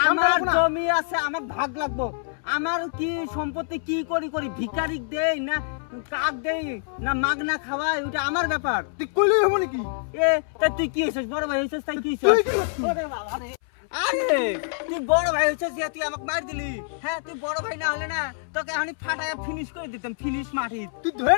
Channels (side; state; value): right; silent; 61 dB below the other